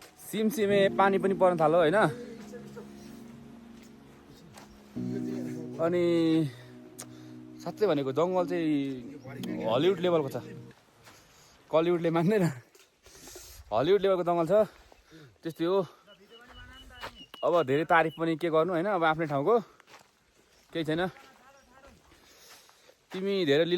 सिमसिमे पानी पनि पर्न थाल्यो होइन अनि साँच्चै भनेको जङ्गल चाहिँ हलिउड लेभलको छ कलिउडले मान्दैन हलिउड लेभलको जङ्गल छ त्यस्तै हो अब धेरै तारिफ पनि के गर्नु होइन अब आफ्नै ठाउँको केही छैन तिमी धेरै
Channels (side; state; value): both; identical; correlation 1.00